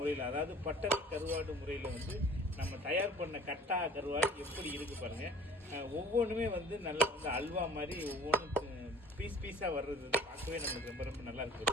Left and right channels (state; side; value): normal; both; correlation 0.46